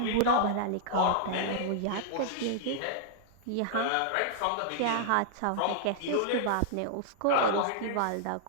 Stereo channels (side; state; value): both; different; correlation -0.01